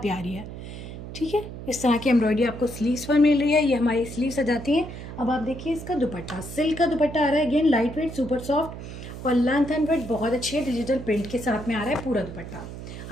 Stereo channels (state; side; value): noise; right; hum, 11 dB below the sound